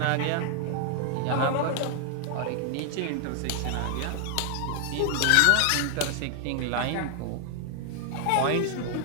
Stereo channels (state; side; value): different; both; correlation 0.00